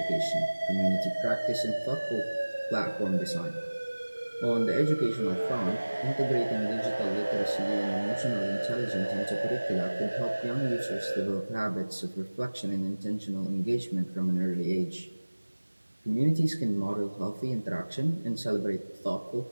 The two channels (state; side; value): inverted; both; correlation -1.00